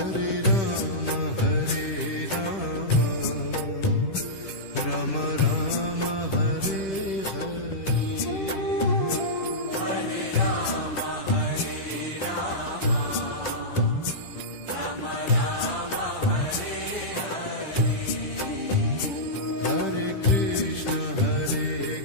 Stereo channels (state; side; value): late; right; 10 ms